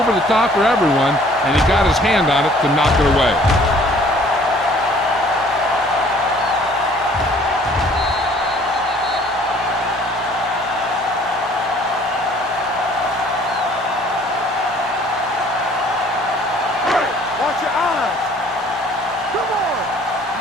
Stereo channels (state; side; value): normal; both; correlation 0.55